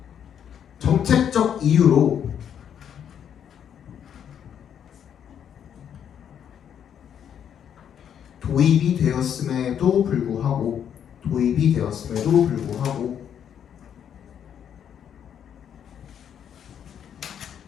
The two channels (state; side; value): quieter; right; 8.8 dB